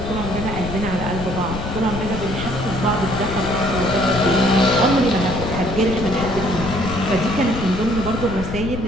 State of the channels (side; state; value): left; noise; rumble, 7 dB below the sound